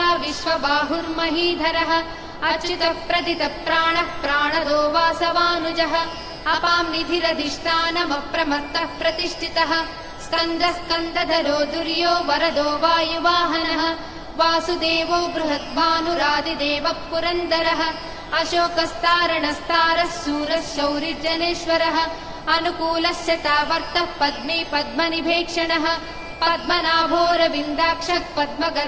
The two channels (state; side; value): identical; both; correlation 1.00